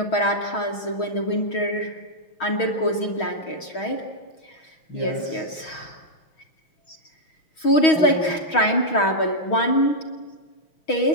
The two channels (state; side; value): late; right; 6.3 ms